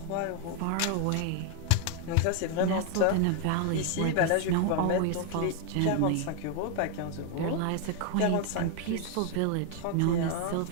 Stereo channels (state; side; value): different; both; correlation 0.00